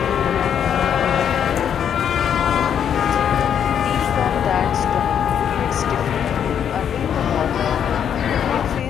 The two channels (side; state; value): right; quieter; 8.7 dB